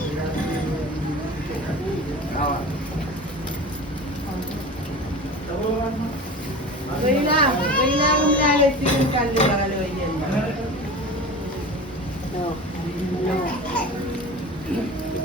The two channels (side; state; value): both; normal; correlation 0.34